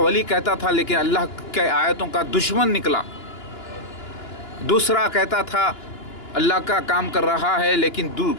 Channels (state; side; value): late; right; 2.9 ms